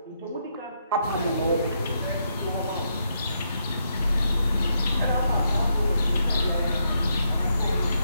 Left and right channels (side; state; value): both; inverted; correlation -0.79